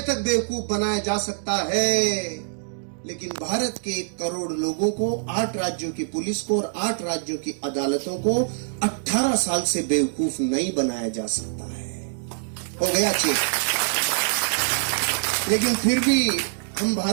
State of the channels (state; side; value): silent; left; digital silence